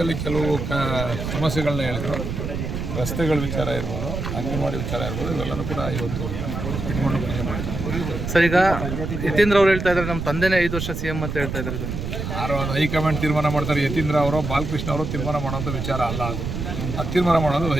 ಕೆಲವು ಸಮಸ್ಯೆಗಳನ್ನ ಹೇಳಿದರು. ರಸ್ತೆಗಳ ವಿಚಾರ ಇರ್ಬೋದು, ಅಂಗನವಾಡಿ ವಿಚಾರ ಇರ್ಬೋದು, ಇವೆಲ್ಲನೂ ಕೂಡ ಇವತ್ತು ಇಟ್ಕೊಂಡು ಸರ್. ಈಗ ಯತೀಂದ್ರ ಅವ್ರು ಹೇಳ್ತಾ ಇದ್ದಾರೆ ನಮ್ಮ ತಂದೆನೇ 5 ವರ್ಷ CM ಅಂತ ಹೇಳ್ತಾ ಇದ್ದಾರೆ ಸರ್. ಯಾರೋ ಹೈಕಮಾಂಡ್ ತೀರ್ಮಾನ ಮಾಡ್ತಾರೆ. ಯತೀಂದ್ರ ಅವರು ಬಾಲಕೃಷ್ಣ ಅವರು ತೀರ್ಮಾನ ಮಾಡೋಂಥ ವಿಚಾರ ಅಲ್ಲ ಅದು. ಅದು ತೀರ್ಮಾನ ಮಾಡೋದು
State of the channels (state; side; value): noise; right; rumble, 4 dB below the sound